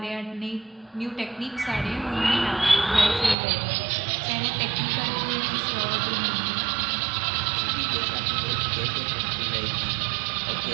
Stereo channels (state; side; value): drops out; left; at 3.4 s